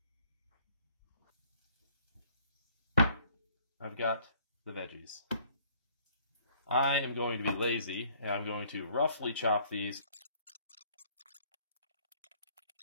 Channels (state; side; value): inverted; both; correlation -0.60